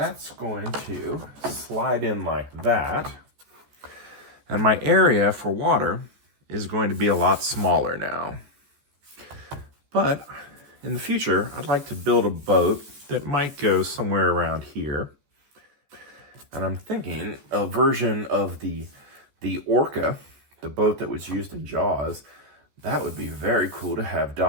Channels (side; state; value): left; late; 14 ms